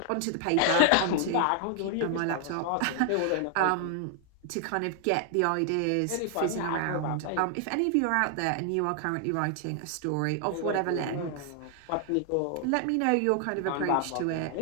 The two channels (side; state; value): both; different; correlation 0.00